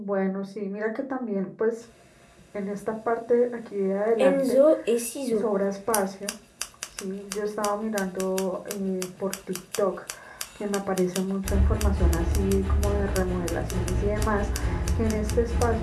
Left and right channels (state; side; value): identical; both; correlation 1.00